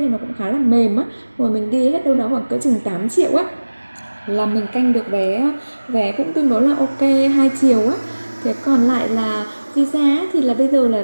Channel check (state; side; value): inverted; both; correlation -1.00